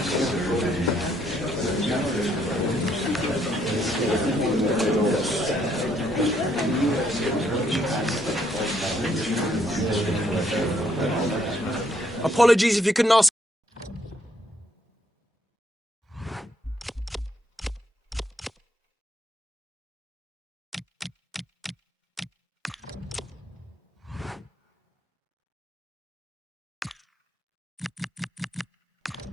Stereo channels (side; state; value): both; normal; correlation 0.70